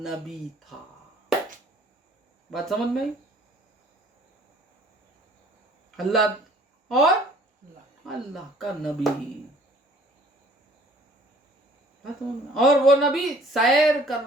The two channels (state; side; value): normal; both; correlation 0.55